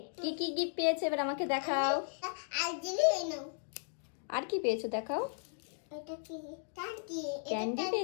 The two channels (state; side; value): silent; right; digital silence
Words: কি কি গিফট পেয়েছো এবার আমাকে দেখাও। আর কি পেয়েছো দেখাও। ক্যান্ডি